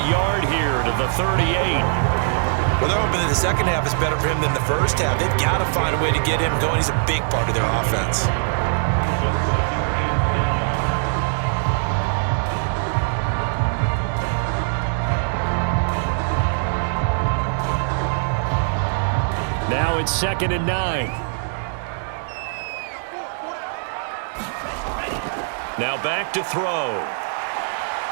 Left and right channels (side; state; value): left; silent; digital silence